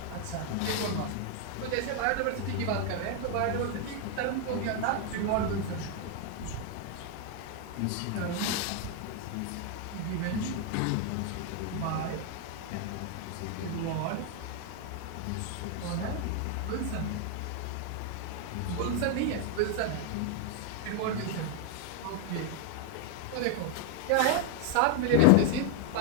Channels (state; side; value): different; both; correlation 0.00